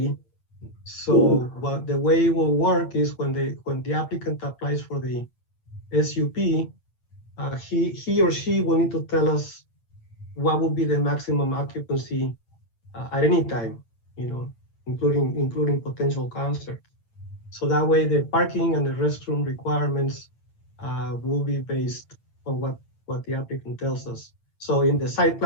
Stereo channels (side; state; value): right; late; 8.8 ms